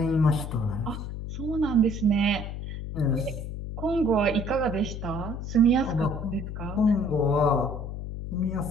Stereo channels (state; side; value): noise; left; hum, 7 dB below the sound